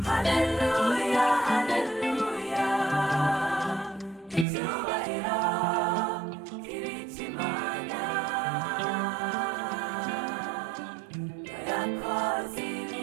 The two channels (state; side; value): drops out; left; at 4.5 s